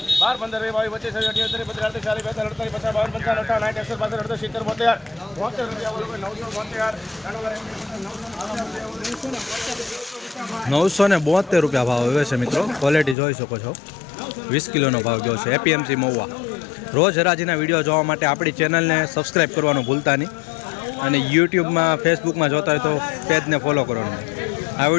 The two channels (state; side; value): drops out; right; at 13.2 s